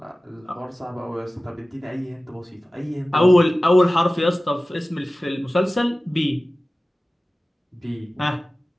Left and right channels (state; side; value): normal; both; correlation 0.96